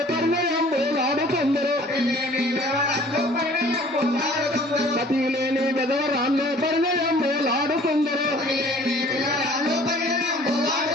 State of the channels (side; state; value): both; normal; correlation 0.52